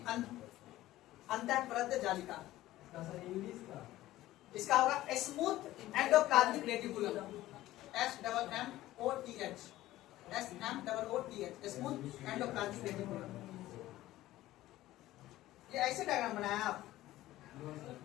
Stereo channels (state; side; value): quieter; right; 15.7 dB